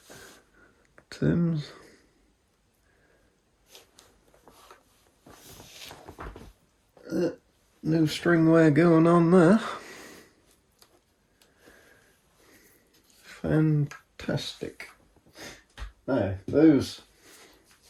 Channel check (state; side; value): identical; both; correlation 1.00